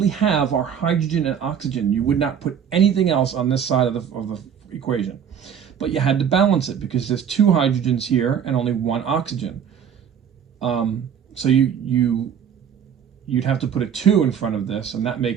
have are hydrogen and oxygen. You would not put anything else on this side of the equation. But you had to balance it because there's two hydrogens here and only one oxygen. So you'd have to put a 2 in front of this, and that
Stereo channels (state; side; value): quieter; left; 8.1 dB